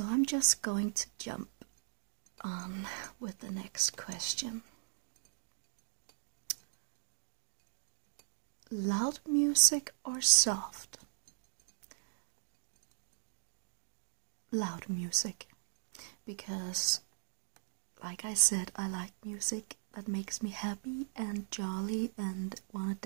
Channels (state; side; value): silent; left; digital silence